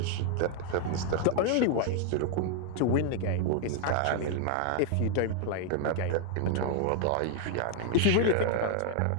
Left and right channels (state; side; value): different; both; correlation 0.00